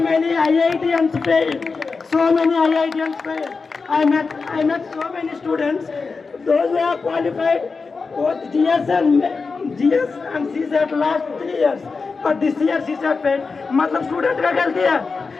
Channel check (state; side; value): quieter; right; 4.5 dB